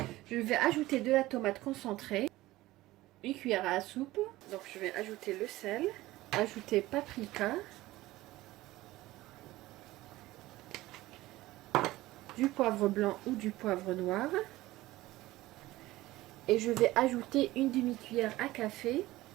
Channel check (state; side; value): quieter; left; 17.6 dB